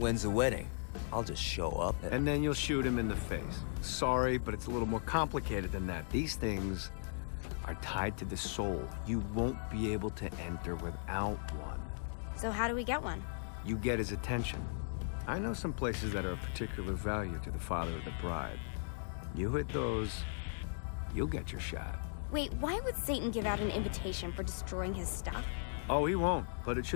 the wedding? I'll just show up And then you'll shoot him in the face. Sorry, but it's a little more complicated than that. These things are tied to the soul. You won't be able to enter without one. So how do we get one? You get his attention. I know some places that are of particular value to the father of the bride. You hit those, you'll get your shot. Wait, why would Satan give out an invitation for destroying his stuff? Oh, he won't, but it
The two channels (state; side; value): silent; right; digital silence